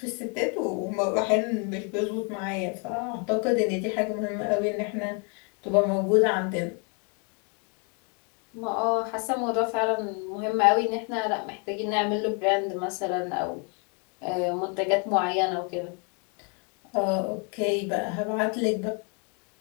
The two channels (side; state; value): right; quieter; 37.2 dB